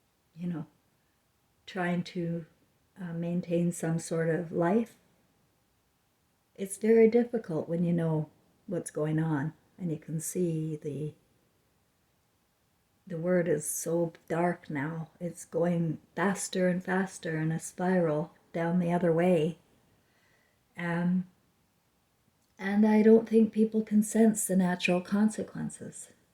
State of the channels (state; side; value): identical; both; correlation 1.00